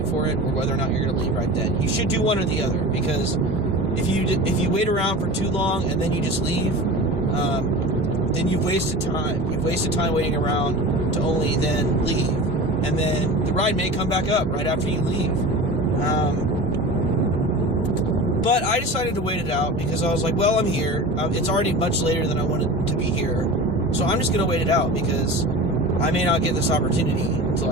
for it, or whether or not you're going to leave right then. You should do one or the other, because if you wait around for too long and then you just leave, then you've wasted time. You've wasted time waiting around to only then leave, and then the ride may come back up right after you leave. But I decided to wait it out because I was like, well, I'm here. It's already much later than I wanted to be here, so I'm just going to wait it out, because I may not get this opportunity to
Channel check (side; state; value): both; normal; correlation 0.33